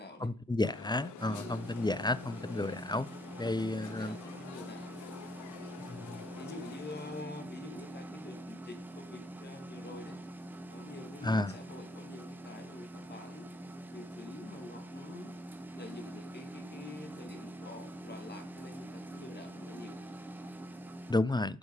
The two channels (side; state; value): both; normal; correlation 0.71